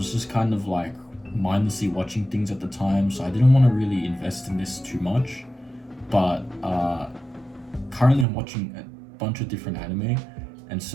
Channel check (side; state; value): left; drops out; at 8.2 s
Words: just kind of like mindlessly watching things at the time, so I didn't want to really invest in this too much. But currently I'm watching a bunch of different anime, and